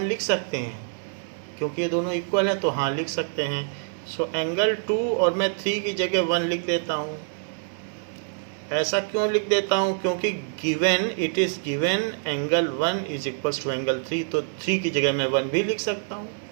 लिख सकते हैं? क्योंकि ये दोनों इक्वल हैं तो हाँ लिख सकते हैं। सो एंगल 2 और मैं 3 की जगह 1 लिख देता हूँ। ऐसा क्यों लिख देता हूँ? क्योंकि given, it is given angle 1 is equals to angle 3, तो 3 की जगह मैं 1 भी लिख सकता हूँ।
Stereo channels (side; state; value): left; silent; 61 dB below the other